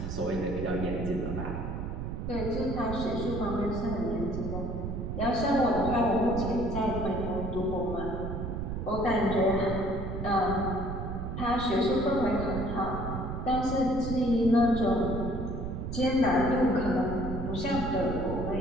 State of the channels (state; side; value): noise; right; rumble, 4 dB below the sound